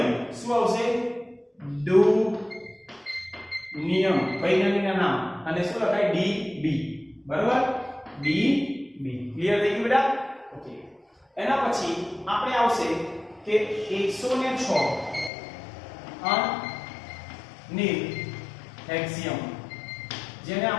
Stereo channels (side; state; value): right; drops out; at 15.3 s